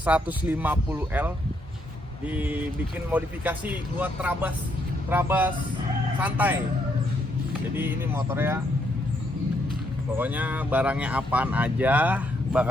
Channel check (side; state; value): both; normal; correlation 0.74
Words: 150L. Dibikin modifikasi buat Trabas santai. Jadi ini motornya, pokoknya barangnya apaan aja